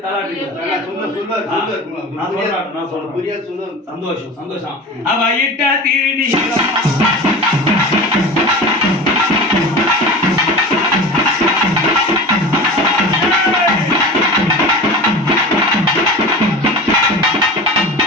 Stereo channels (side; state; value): both; normal; correlation 0.33